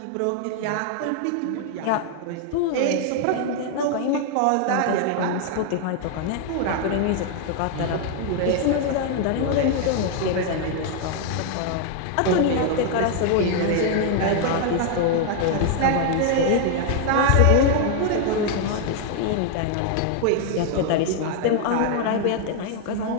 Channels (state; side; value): different; both; correlation 0.00